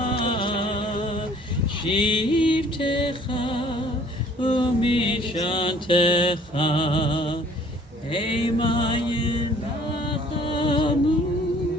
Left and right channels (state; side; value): normal; both; correlation 0.55